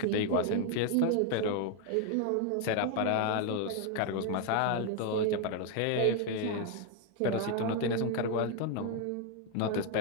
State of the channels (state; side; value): different; both; correlation 0.00